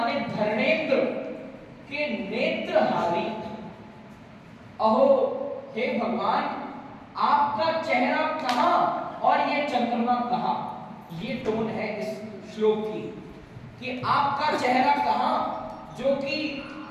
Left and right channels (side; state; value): both; identical; correlation 1.00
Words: धर्मेंद्र के नेत्रहारी। अहो हे भगवान, आपका चेहरा कहां और ये चंद्रमा कहां। ये टोन है इस श्लोक की कि आपका चेहरा कहां जो कि